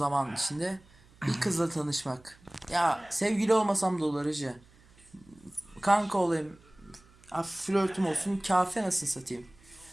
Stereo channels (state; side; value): noise; right; hum, 27 dB below the sound